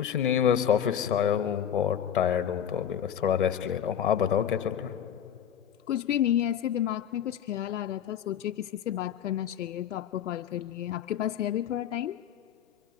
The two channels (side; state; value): right; quieter; 9.3 dB